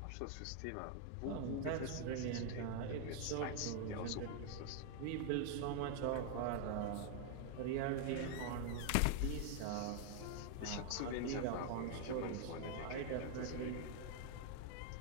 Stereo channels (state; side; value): different; both; correlation 0.00